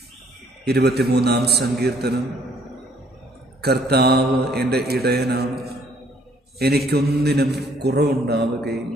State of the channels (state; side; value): normal; both; correlation 0.63